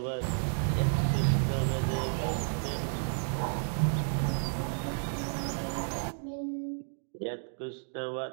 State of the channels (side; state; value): left; silent; 57 dB below the other